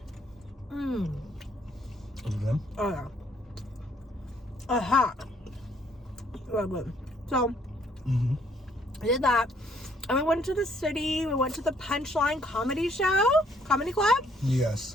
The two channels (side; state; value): both; normal; correlation 0.65